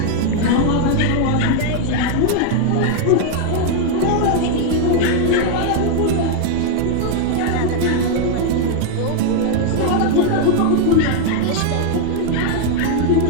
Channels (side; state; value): both; different; correlation 0.00